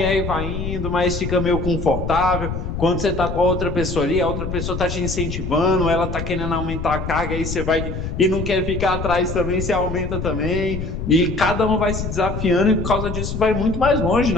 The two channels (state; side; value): noise; left; rumble, 5 dB below the sound